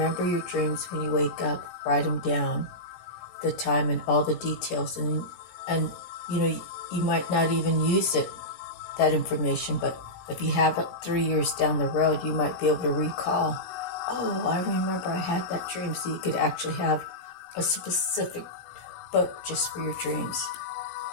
your dreams when you wake up, write them down, the time and all the details, and you might not even use that information, but if you have it 3 years down the road, you might be able to recall, oh, I remember I had that dream, so you could actually have a specific book just for your dreams.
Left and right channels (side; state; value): right; late; 17 ms